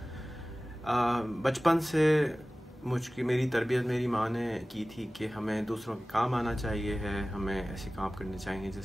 بچپن سے میری تربیت میری ماں نے کی تھی کہ ہمیں دوسروں کے کام آنا چاہیے ہے، ہمیں ایسے کام کرنے چاہیے جس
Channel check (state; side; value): normal; both; correlation 0.98